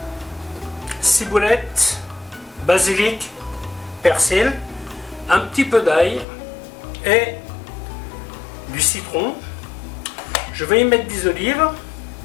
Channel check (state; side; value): drops out; right; at 6.2 s